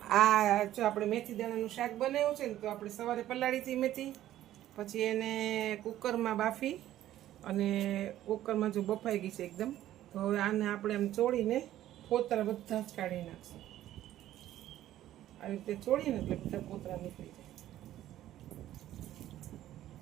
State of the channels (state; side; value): quieter; left; 13.2 dB